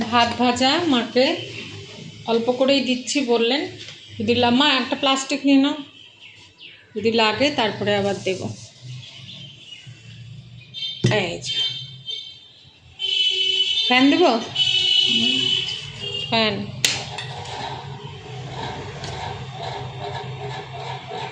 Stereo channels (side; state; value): both; identical; correlation 1.00